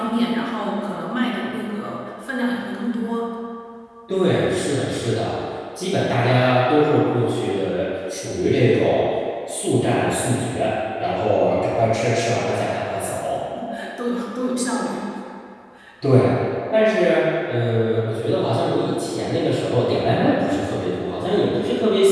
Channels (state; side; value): identical; both; correlation 1.00